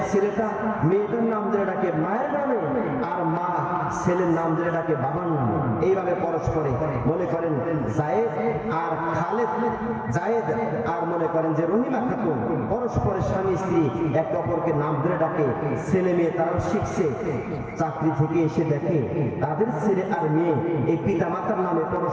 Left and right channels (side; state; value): both; identical; correlation 1.00